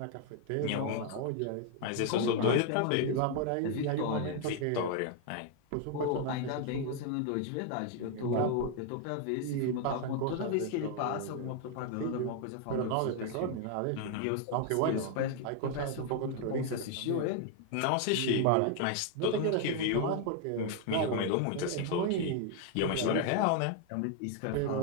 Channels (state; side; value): different; both; correlation 0.00